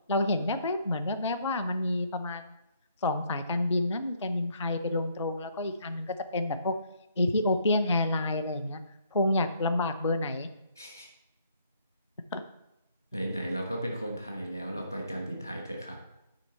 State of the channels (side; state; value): both; inverted; correlation -0.67